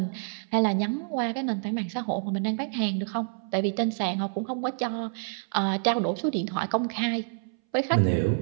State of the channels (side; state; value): left; silent; 60 dB below the other